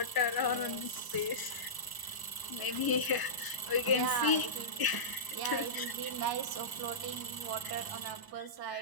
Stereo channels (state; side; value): late; right; 1.0 ms